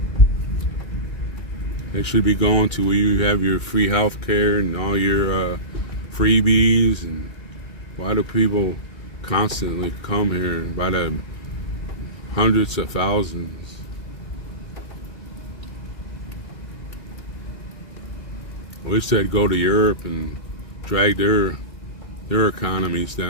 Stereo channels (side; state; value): right; late; 2.3 ms